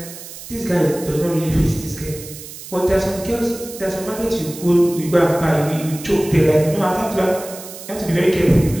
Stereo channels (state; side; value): noise; right; hiss, 14 dB below the sound